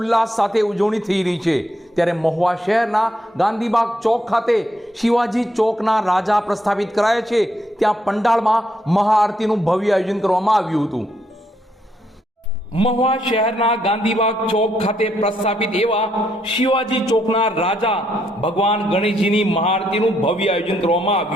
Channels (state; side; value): normal; both; correlation 0.75